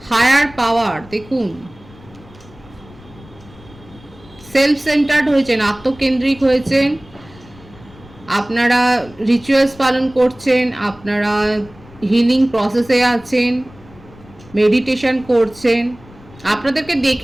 হায়ার পাওয়ার দেখুন, সেলফ সেন্টার্ড হয়েছেন, আত্মকেন্দ্রিক হয়েছেন, আপনারা রিচুয়ালস পালন করছেন, আপনারা হিলিং প্রসেসে আছেন, মেডিটেশন করছেন। আপনাদেরকে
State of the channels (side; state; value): left; noise; rumble, 22 dB below the sound